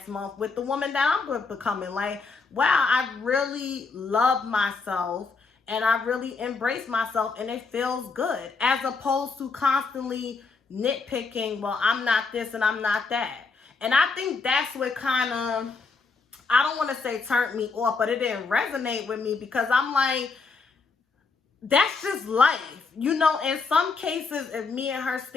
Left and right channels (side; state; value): right; quieter; 4.5 dB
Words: month with the woman that I'm becoming. Like, wow, I really love myself and I really embrace myself and it feels good, as opposed to constantly nitpicking, well, I'm not this and I'm not that. And I think that's what kind of, I don't want to say turned me off, but it didn't resonate with me, because I'm like, that's just life. You know, in some cases, if me and her